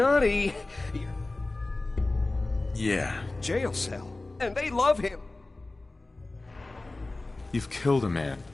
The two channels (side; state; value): right; quieter; 3.0 dB